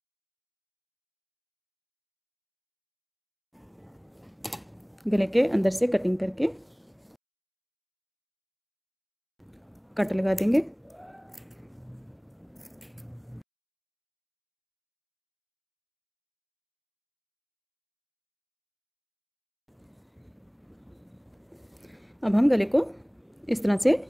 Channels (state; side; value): identical; both; correlation 1.00